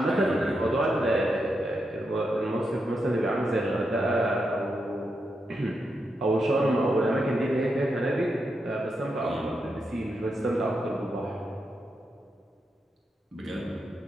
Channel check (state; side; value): normal; both; correlation 0.84